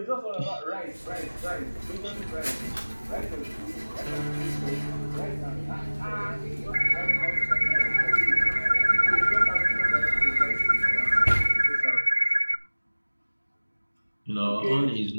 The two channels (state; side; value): inverted; both; correlation -1.00